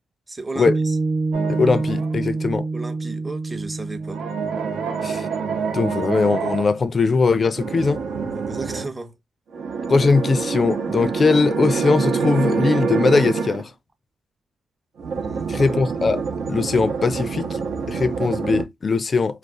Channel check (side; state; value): both; normal; correlation 0.86